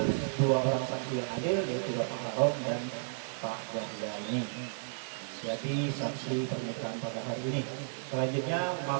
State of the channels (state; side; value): silent; left; digital silence